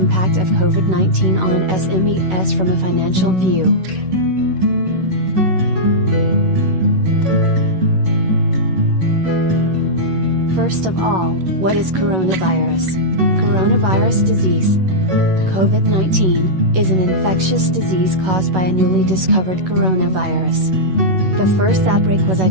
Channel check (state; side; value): late; left; 11 ms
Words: of COVID-19 on SMEs from a financial view. First of all, what is coronavirus? Coronavirus disease. COVID-19 is an infectious disease caused by a newly discovered coronavirus. The first outbreak was